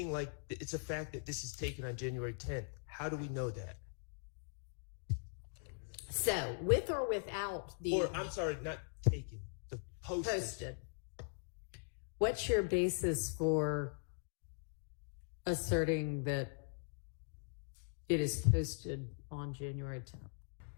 like it's a fact that this is taken on January 10th. How do we know that? So, with or without the... Or, I'm sorry, not taken, the posted. What's your basis for asserting that it is posted on January 10th?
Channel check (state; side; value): silent; right; digital silence